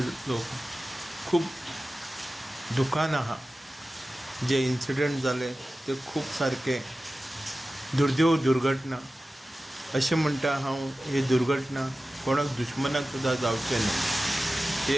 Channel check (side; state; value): both; normal; correlation 0.95